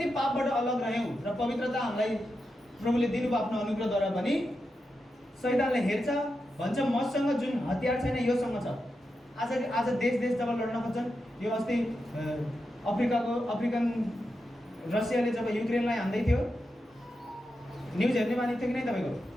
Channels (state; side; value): normal; both; correlation 0.88